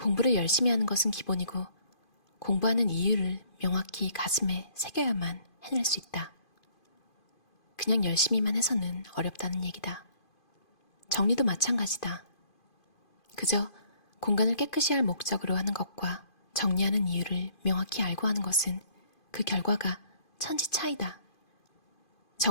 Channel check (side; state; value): right; late; 2.5 ms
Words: 열심히 하는 것은 기본이고 공부하는 이유를 명확히 가슴에 새겨야만 해낼 수 있다. 그냥 열심히만 해서는 어렵다는 얘기다. 정리도 마찬가지다. 그저 공간을 깨끗이 할 목적으로 하는 것과 정리하는 이유를 명확히 알고 하는 것은 그 결과가 천지 차이다.